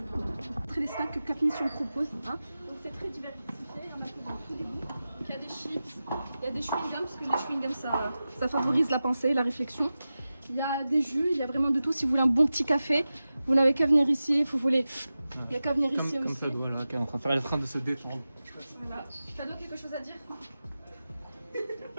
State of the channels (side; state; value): both; inverted; correlation -0.94